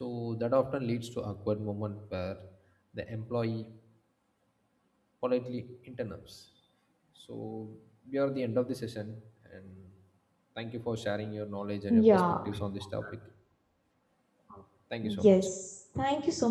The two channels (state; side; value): identical; both; correlation 1.00